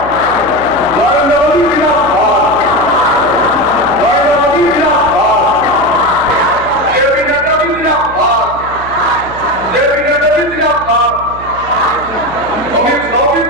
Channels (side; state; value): right; noise; hum, 15 dB below the sound